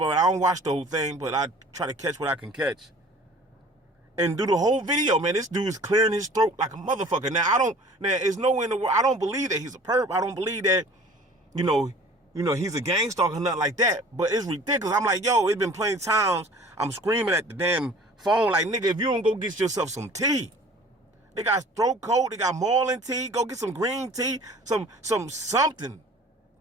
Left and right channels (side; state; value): both; normal; correlation 0.47